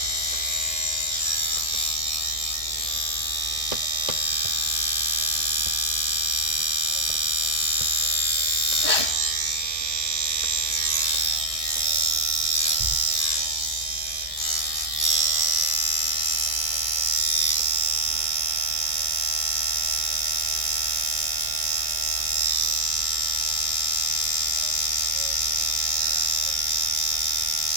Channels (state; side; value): late; left; 1.6 ms